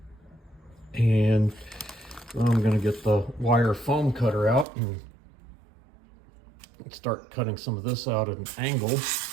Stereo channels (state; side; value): drops out; left; at 4.7 s